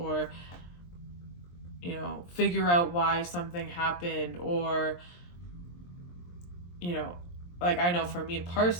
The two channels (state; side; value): late; right; 23 ms